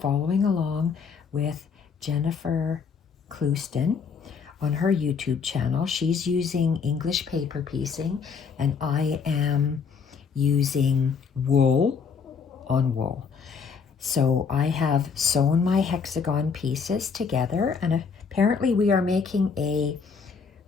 along with Jennifer Clouston on her YouTube channel. She's using English paper piecing and I am using wool on wool. So I have sewn my hexagon pieces together, and apparently we are making a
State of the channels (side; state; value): right; quieter; 5.8 dB